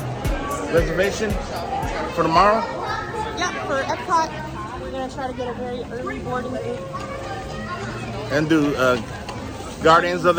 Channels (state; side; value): identical; both; correlation 1.00